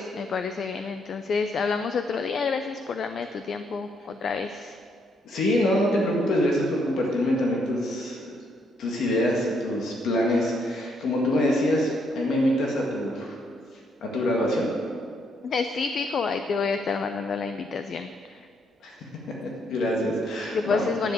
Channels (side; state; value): both; normal; correlation 0.73